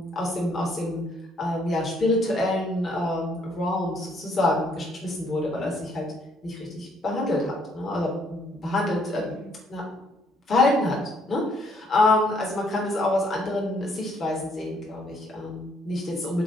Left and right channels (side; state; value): both; normal; correlation 0.67